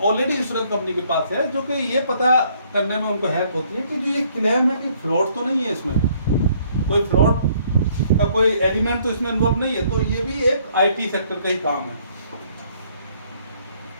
ऑलरेडी इंश्योरेंस कंपनी के पास है, जो कि ये पता करने में उनको हेल्प होती है कि जो ये क्लेम है कि फ्रॉड तो नहीं है, इसमें कोई फ्रॉड का कोई एलिमेंट तो इसमें इन्वॉल्व नहीं है, तो ये भी एक आईटी सेक्टर का ही काम है।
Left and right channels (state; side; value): inverted; both; correlation -0.64